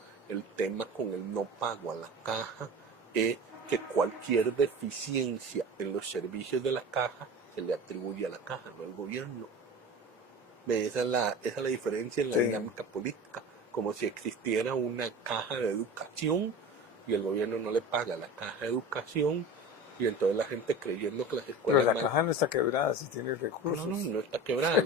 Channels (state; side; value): normal; both; correlation 0.34